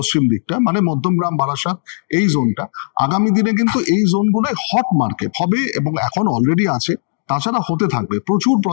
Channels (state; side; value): silent; right; digital silence